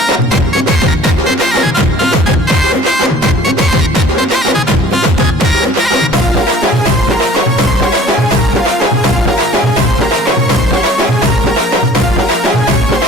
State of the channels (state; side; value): normal; both; correlation 0.51